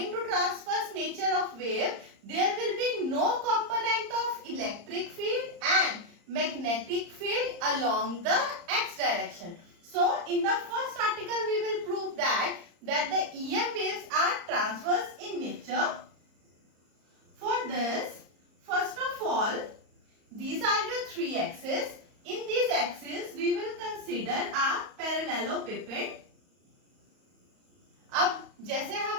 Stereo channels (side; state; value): left; late; 34 ms